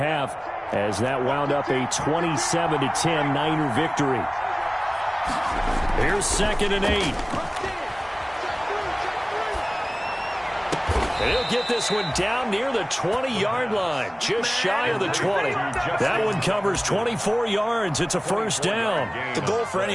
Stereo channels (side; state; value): both; identical; correlation 1.00